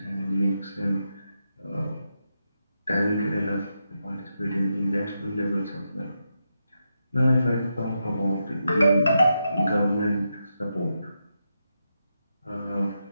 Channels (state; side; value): inverted; both; correlation -0.85